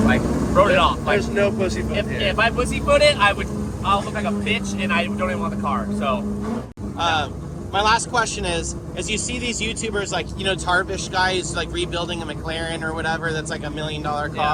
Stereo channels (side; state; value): both; identical; correlation 1.00